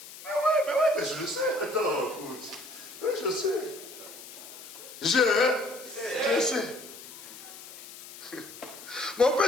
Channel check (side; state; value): left; noise; hiss, 15 dB below the sound